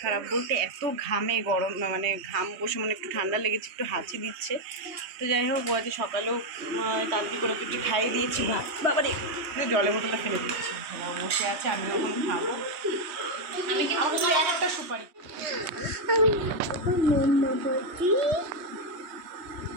খারাপ বলতে এত ঘামে, গরম মানে ঘাম বসে, মানে একটু ঠান্ডা লেগেছে, একটু হাঁচি দিচ্ছে। তো যাই হোক, ও আজকে সকালেও তাড়াতাড়ি করে একটু খাইয়ে দিয়েছি ভাত। বাবারে জলের বোতলটা ফেলে দিচ্ছি, বসে আছে, আমি ওখানে খাবো। আমি কিন্তু একটা সুপারি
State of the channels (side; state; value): left; late; 3.2 ms